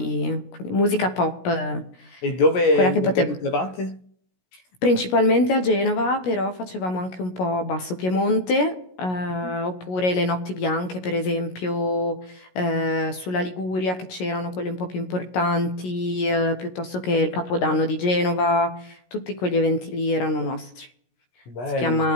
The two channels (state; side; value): late; right; 16 ms